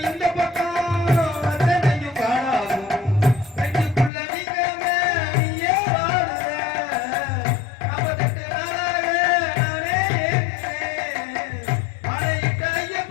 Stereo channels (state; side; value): drops out; right; at 4.1 s